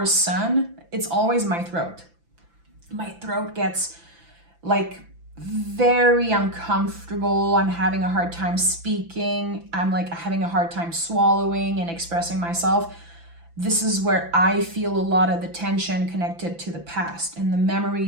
sun, it's always my throat. My throat gets like very uncomfortable. I'm having a hard time speaking. I'm like having a hard time swallowing and expressing myself. This is where I feel a lot of the tension connected to the past and the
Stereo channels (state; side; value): late; left; 5.9 ms